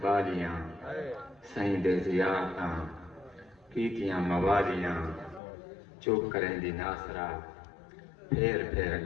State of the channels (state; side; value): drops out; right; at 5.4 s